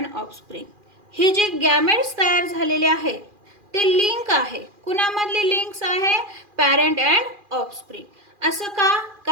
offspring. हे जे गॅमेट्स तयार झालेले आहे ते लिंक आहे. कुणामधली लिंक्स आहे? Parent and offspring. असं का?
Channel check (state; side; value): late; left; 2.4 ms